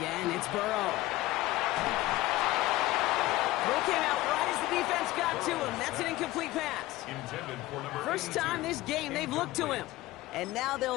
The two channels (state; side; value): quieter; right; 17.6 dB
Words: it's Burrow. Throw came out right as the defense got to him. That's an incomplete pass. First time this game they've looked to him. And now